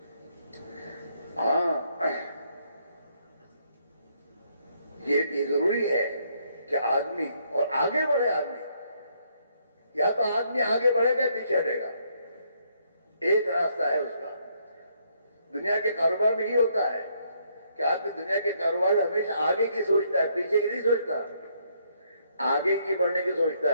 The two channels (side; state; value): both; inverted; correlation -0.71